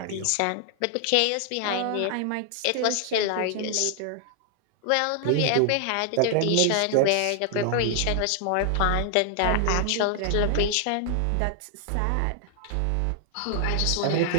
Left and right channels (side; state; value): both; different; correlation 0.00